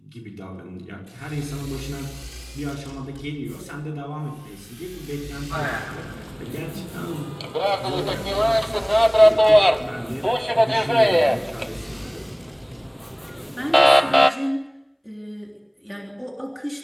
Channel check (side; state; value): both; identical; correlation 1.00